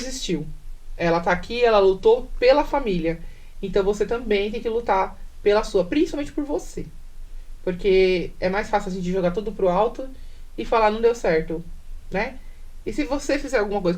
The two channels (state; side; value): identical; both; correlation 1.00